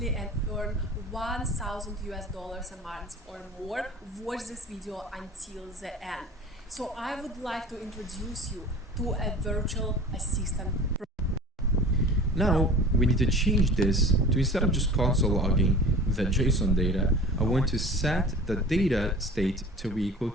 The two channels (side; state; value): both; normal; correlation 0.40